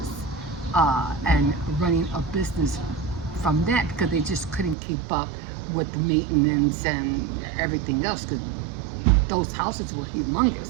and running a business from that, because they just couldn't keep up with the maintenance and everything else, because those houses were humongous.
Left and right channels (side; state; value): left; drops out; at 4.8 s